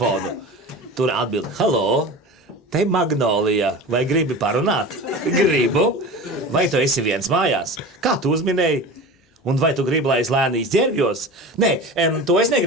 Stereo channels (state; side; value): normal; both; correlation 0.33